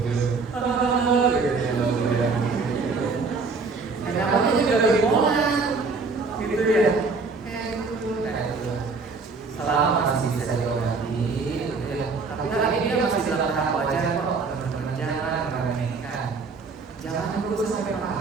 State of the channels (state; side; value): quieter; left; 4.4 dB